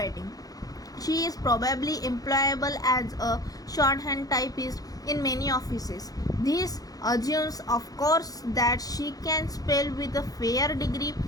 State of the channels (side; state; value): right; late; 0.18 ms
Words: she is probably employable as a shorthand typist in many offices. This assumes, of course, that she can spell with a fair degree